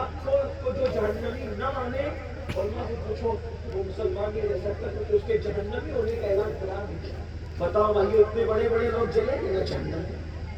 کو جو جہنمی نہ مانے، اور میں سے پوچھو وہ مسلمان نہیں رہ سکتا کیونکہ اس کے جہنمی ہونے کا اعلان قرآن نہیں کیا۔ بتاؤ بھائی اتنے بڑے بڑے لوگ جلیں گے نہ جہنم میں،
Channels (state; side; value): identical; both; correlation 1.00